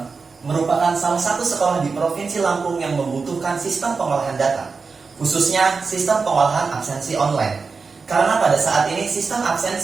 merupakan salah satu sekolah di Provinsi Lampung yang membutuhkan sistem pengolahan data, khususnya sistem pengolahan absensi online. Karena pada saat ini sistem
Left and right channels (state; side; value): quieter; left; 4.7 dB